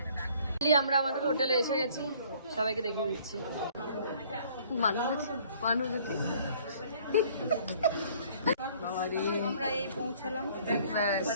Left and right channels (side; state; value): both; inverted; correlation -0.57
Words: আমরা আমাদের হোটেলে এসে গেছি, সবাইকে দেখিয়ে দিচ্ছি। মানুষ আমরা এই পৌঁছালাম,